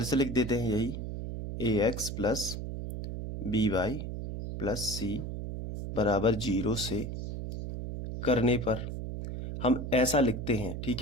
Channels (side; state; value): right; noise; hum, 6 dB below the sound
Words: से लिख देते हैं यही ax plus by plus c बराबर 0 से करने पर हम ऐसा लिखते हैं,